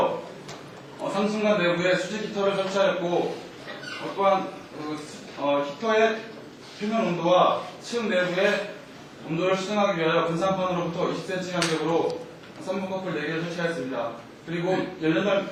상승관 내부에 수직 히터를 설치하였고 또한 히터의 표면 온도와 층 내부의 온도를 수정하기 위하여 분산판으로부터 20cm 간격으로 선분 커플 4개를 설치하였습니다. 그리고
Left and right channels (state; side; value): identical; both; correlation 1.00